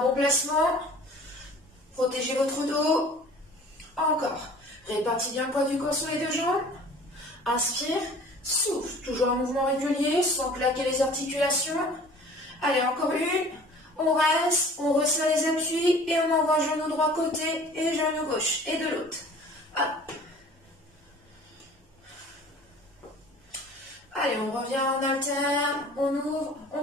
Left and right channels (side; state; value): both; normal; correlation 0.47